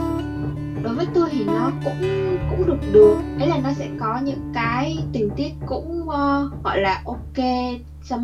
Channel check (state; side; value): identical; both; correlation 1.00